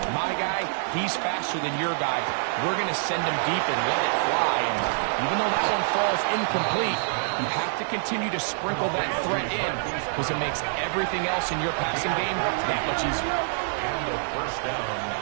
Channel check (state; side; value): silent; left; 61 dB below the other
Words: my guy, he's faster than your guy. We're going to send him deep and let it fly. And even though that one falls incomplete, you have to continue to sprinkle that threat in because it makes everything else in your passing game that much easier. And the 1st down,